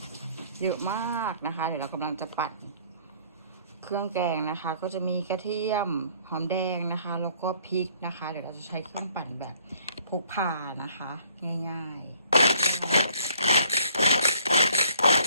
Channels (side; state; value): both; inverted; correlation -0.61